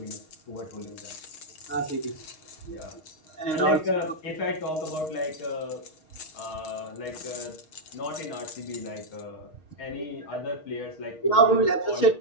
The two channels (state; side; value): late; right; 6.4 ms